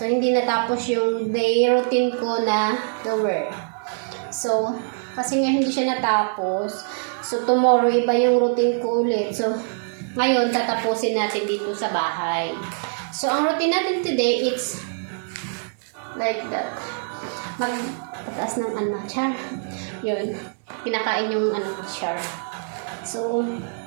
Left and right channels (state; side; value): silent; left; digital silence